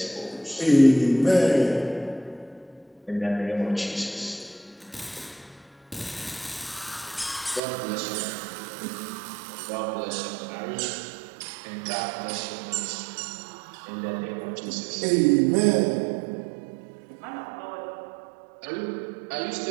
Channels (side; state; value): left; drops out; at 7.6 s